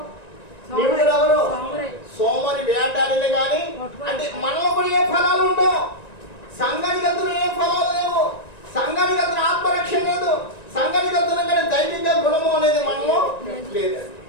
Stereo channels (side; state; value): right; late; 1.9 ms